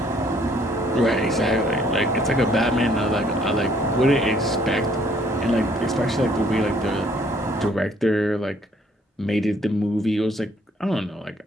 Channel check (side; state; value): both; normal; correlation 0.63